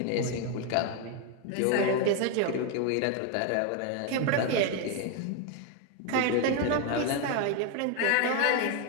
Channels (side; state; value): both; different; correlation 0.01